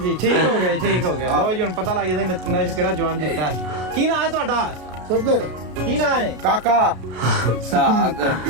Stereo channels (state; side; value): late; left; 33 ms